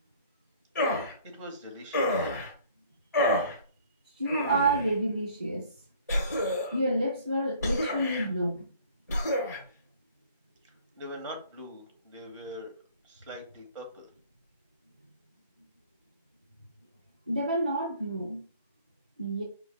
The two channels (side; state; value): both; inverted; correlation -0.54